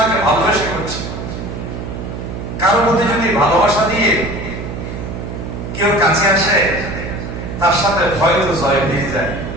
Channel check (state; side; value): noise; right; hum, 7 dB below the sound